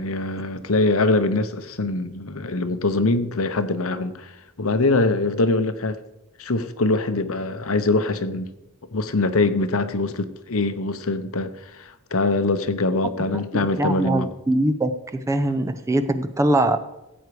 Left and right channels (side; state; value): both; normal; correlation 0.24